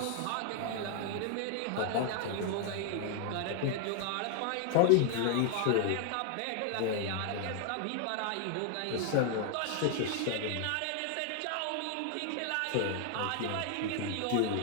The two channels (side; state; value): both; different; correlation 0.00